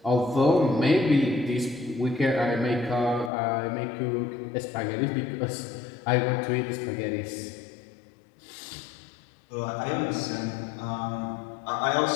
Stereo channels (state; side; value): drops out; right; at 3.3 s